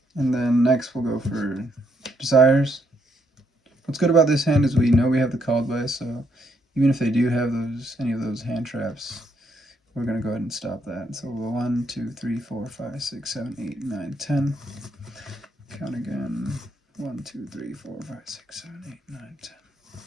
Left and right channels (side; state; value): both; normal; correlation 0.74